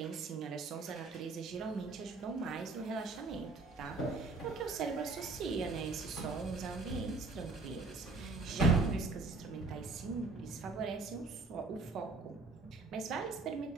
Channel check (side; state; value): left; quieter; 3.7 dB